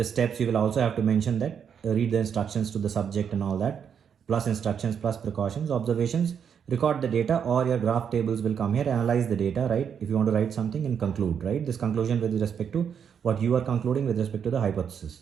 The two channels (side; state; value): left; quieter; 7.6 dB